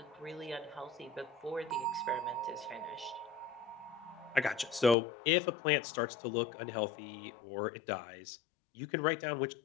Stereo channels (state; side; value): drops out; right; at 5.0 s